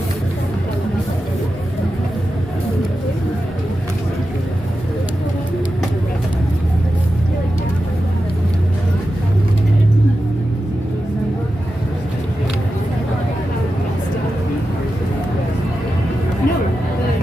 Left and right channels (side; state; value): both; normal; correlation 0.91